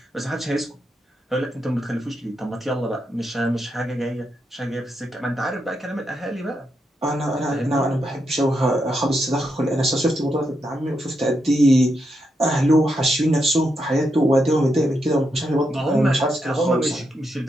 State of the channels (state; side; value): normal; both; correlation 0.83